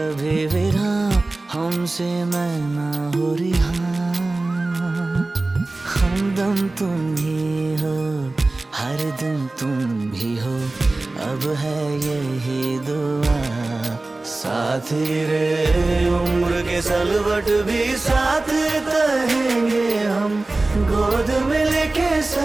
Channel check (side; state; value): left; quieter; 3.1 dB